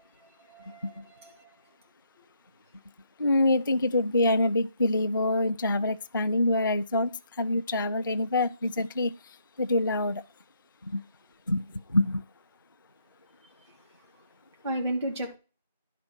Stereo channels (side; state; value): both; inverted; correlation -0.72